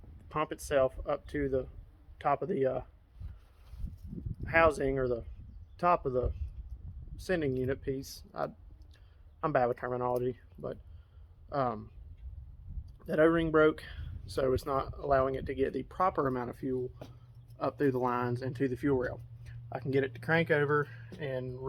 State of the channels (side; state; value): both; identical; correlation 1.00